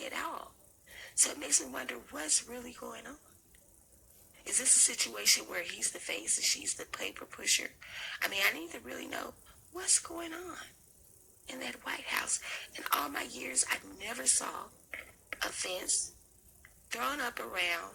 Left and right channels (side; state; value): both; identical; correlation 1.00